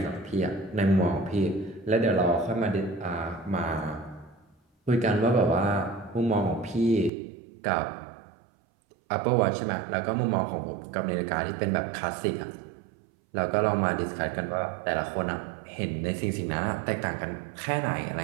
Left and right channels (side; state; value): left; drops out; at 7.1 s